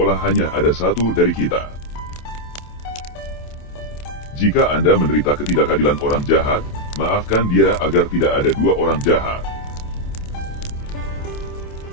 hanya ada satu dari kita. Jika Anda menderita ketidakadilan orang jahat, maafkan dia agar tidak ada dua orang jahat.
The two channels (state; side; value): late; right; 27 ms